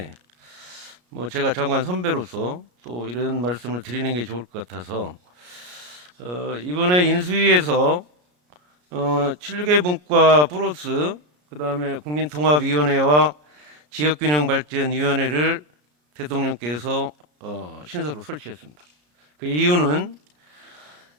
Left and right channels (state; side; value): late; left; 33 ms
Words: 제가 장관 선배로서 또 이런 말씀을 드리는 게 좋을 것 같아서 이번에 인수위에서 7개 분과 플러스 그다음에 국민통합위원회와 지역균형발전위원회를 대통령께서 신설로 설치했습니다. 그 이유는